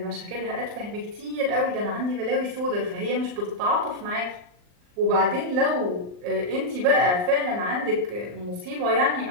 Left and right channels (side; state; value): left; late; 39 ms